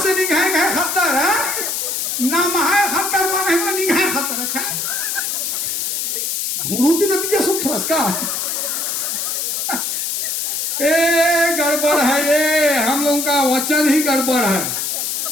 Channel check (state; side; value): noise; left; hiss, 1 dB below the sound